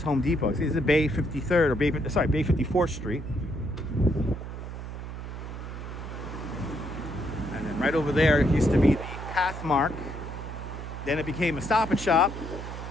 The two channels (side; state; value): right; noise; hum, 8 dB below the sound